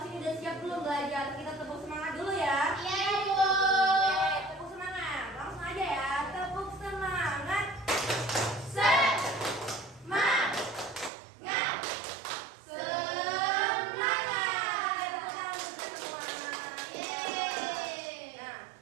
ini udah siap belum belajar? Kita tepuk semangat dulu ya. Iya Bu. Oke, tepuk semangat, langsung aja ya, tepuk semangat. Semangat. Semangat. Tepuk tangan untuk semua. Yeay. Nah,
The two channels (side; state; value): left; drops out; at 11.1 s